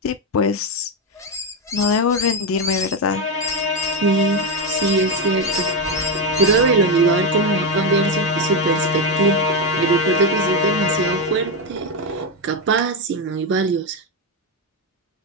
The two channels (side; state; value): both; normal; correlation 0.09